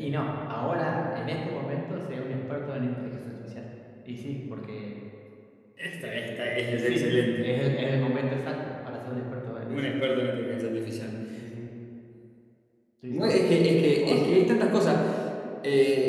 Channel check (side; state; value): both; identical; correlation 1.00